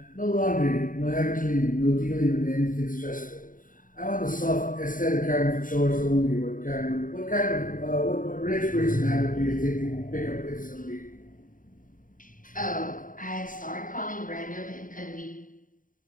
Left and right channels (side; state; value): right; late; 0.39 ms